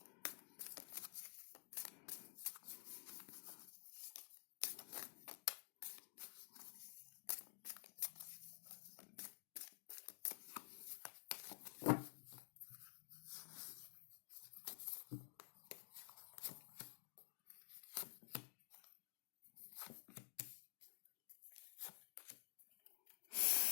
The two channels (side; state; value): right; silent; digital silence